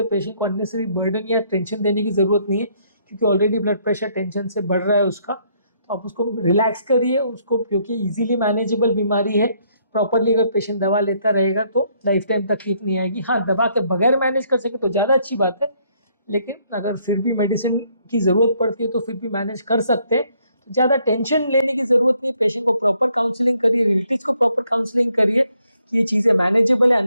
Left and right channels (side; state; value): both; inverted; correlation -0.69